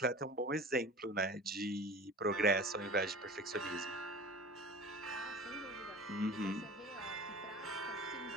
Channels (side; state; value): both; normal; correlation 0.38